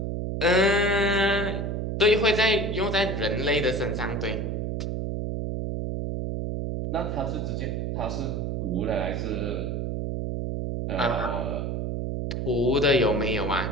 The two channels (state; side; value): noise; right; hum, 2 dB below the sound